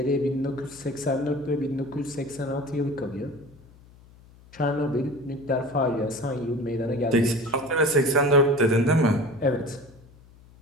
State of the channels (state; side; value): noise; left; hum, 24 dB below the sound